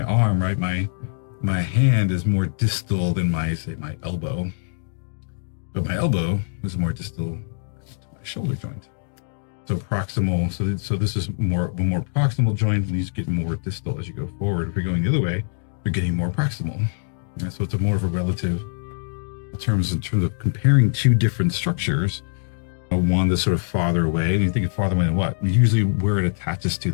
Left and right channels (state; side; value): silent; right; digital silence